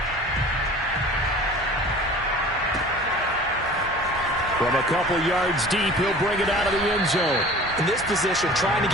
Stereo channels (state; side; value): normal; both; correlation 0.43